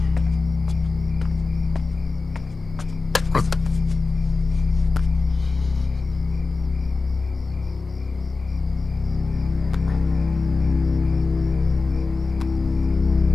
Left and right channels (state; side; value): quieter; right; 3.9 dB